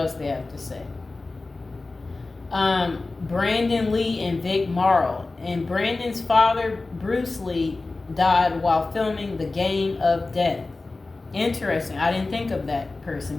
they have to say. Brandon Lee and Vic Morrow. And Brandon's father, Bruce Lee, died while filming The Game of Death. Interesting. I didn't think of that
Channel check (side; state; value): right; quieter; 3.4 dB